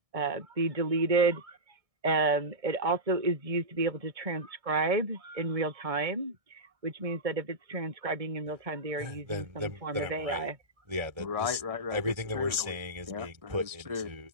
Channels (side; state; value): left; late; 1.6 ms